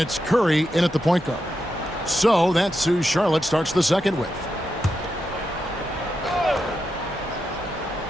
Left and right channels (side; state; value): both; normal; correlation 0.86